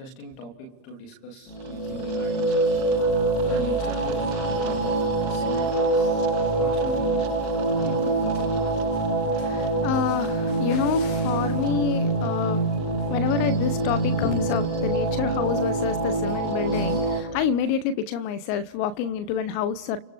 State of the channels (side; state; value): right; late; 39 ms